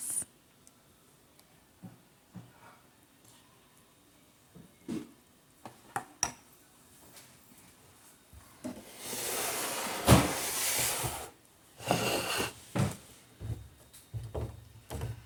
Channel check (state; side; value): identical; both; correlation 1.00